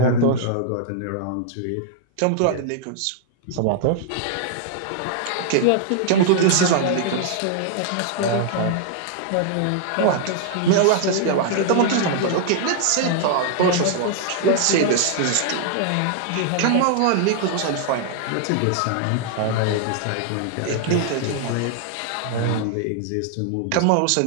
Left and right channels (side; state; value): both; different; correlation 0.00